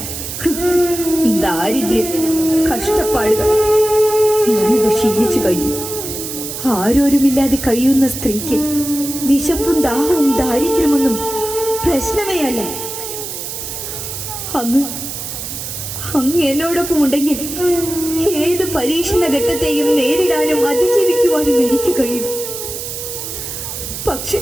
ദാരിദ്ര്യം, കഷ്ടപ്പാടുകൾ ഞാനത് ക്ഷീണിച്ചു കഴിഞ്ഞു. ആരോരുമില്ലാതെ കഴിയുന്ന സ്ത്രീക്ക് വിശപ്പും ദാഹവും ദാരിദ്ര്യമൊന്നും പ്രശ്നമേ അല്ല. അങ്ങ് എന്നോടൊപ്പം ഉണ്ടെങ്കിൽ ഏത് പരീക്ഷണ ഘട്ടത്തെയും നേരിടാനും അതിജീവിക്കുവാനും എനിക്ക് കഴിയും. പക്ഷെ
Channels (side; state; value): right; noise; hiss, 7 dB below the sound